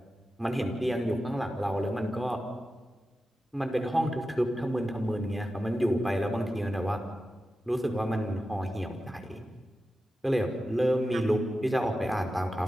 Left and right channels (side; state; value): both; normal; correlation 0.92